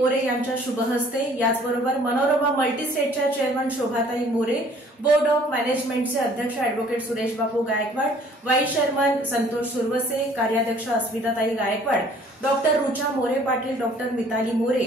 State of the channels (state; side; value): normal; both; correlation 0.56